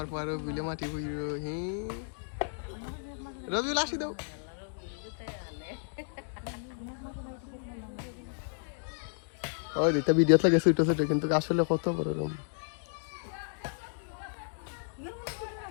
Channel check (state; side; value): silent; right; digital silence